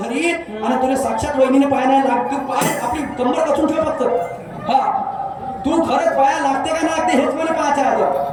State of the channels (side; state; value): both; identical; correlation 1.00